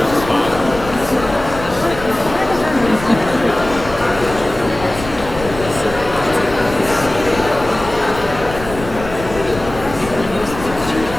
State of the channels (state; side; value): noise; left; rumble, 12 dB below the sound